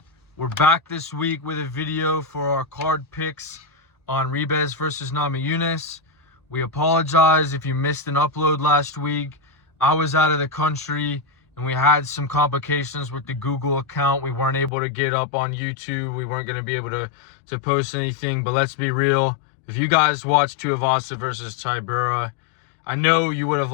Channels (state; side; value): drops out; right; at 14.7 s